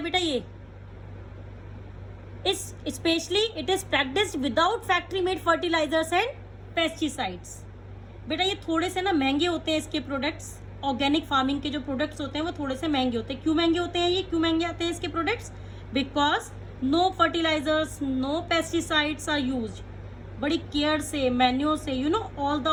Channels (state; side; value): identical; both; correlation 1.00